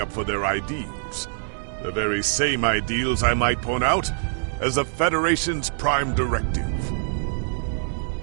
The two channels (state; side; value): silent; left; digital silence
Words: up for their ideals. The very same ideals, I might point out, as the Federation's prime directive.